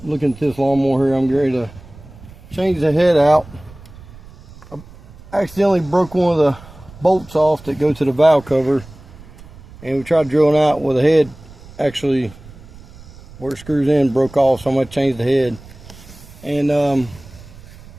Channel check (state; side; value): noise; right; rumble, 20 dB below the sound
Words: looking at this lawnmower here. I'm ready to change the head out. I accidentally broke one of the bolts off that go to the valve cover, and we tried drilling out with the head actually where it screws in broke off, so I'm going to change the head. And